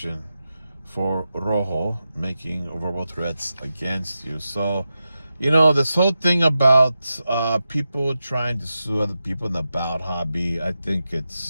for Rojo making verbal threats against you? So, this whole thing about people trying to sue other people in the bout hobby, I think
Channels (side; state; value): both; inverted; correlation -0.91